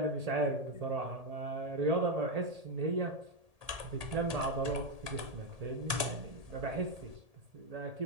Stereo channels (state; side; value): late; left; 1.8 ms